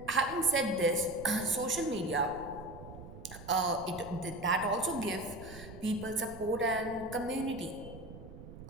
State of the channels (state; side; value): noise; right; rumble, 14 dB below the sound